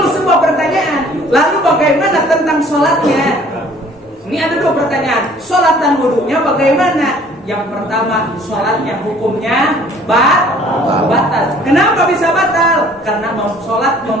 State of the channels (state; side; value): normal; both; correlation 0.55